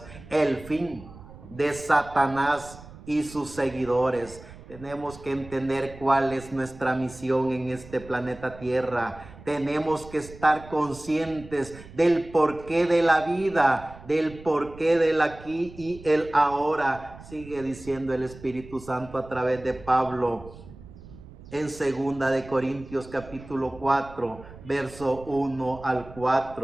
El fin de Satanás y sus seguidores. Tenemos que entender cuál es nuestra misión en este planeta Tierra. Tenemos que estar conscientes del porqué de la vida, del porqué del aquí y el ahora. Sigue diciendo el Espíritu Santo a través de Pablo en 2 de Corintios capítulo 4, verso 1 al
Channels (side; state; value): right; noise; rumble, 18 dB below the sound